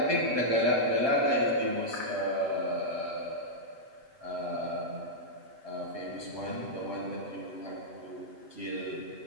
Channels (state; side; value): late; left; 8.0 ms